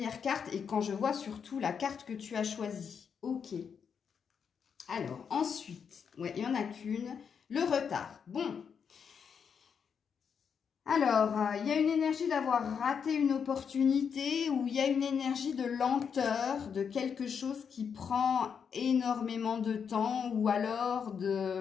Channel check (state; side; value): quieter; right; 6.8 dB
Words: carte et quand je vois surtout la carte que tu as choisie. Ok. Alors, ensuite, ouais, il n'y en a qu'une, le retard. Bon. Alors, il y a une énergie d'avoir raté une opportunité ou il y a une énergie de lenteur, de quelque chose qui prend énormément de temps ou alors